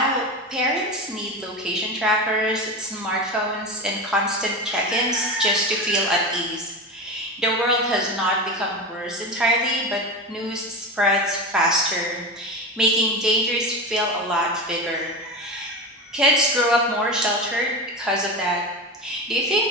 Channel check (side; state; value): both; normal; correlation 0.23